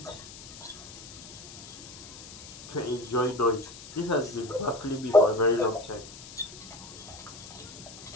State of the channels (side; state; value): left; noise; hiss, 15 dB below the sound